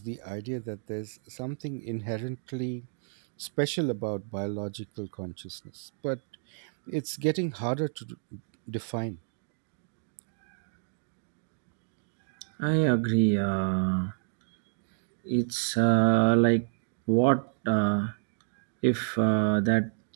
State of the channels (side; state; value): left; silent; digital silence